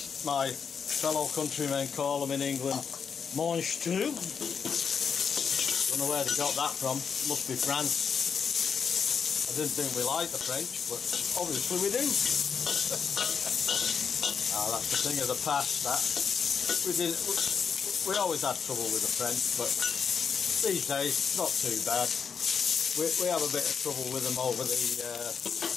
my fellow countrymen call them in England, mange tout. Don't know where they got that from. Must be France. I didn't think we liked the French, but obviously we do. That's the thing of the past. That we always had trouble with the French, but these days it's not too bad. We have a bit of trouble with them over the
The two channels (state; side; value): quieter; right; 6.5 dB